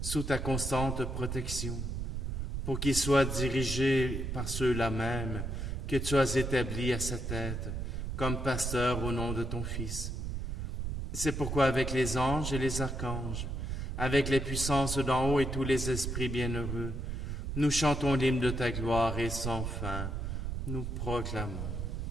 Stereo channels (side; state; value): right; noise; rumble, 3 dB below the sound